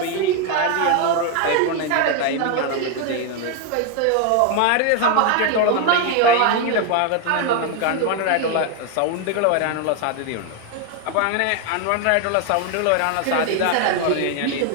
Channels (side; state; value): both; different; correlation 0.01